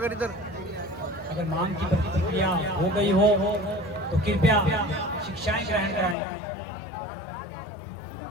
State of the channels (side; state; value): right; drops out; at 6.2 s